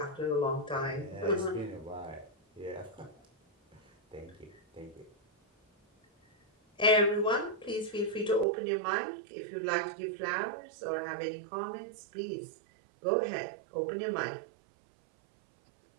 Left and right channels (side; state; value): left; drops out; at 8.5 s